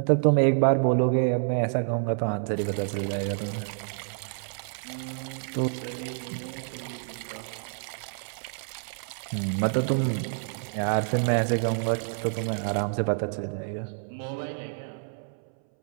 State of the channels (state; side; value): silent; left; 59 dB below the other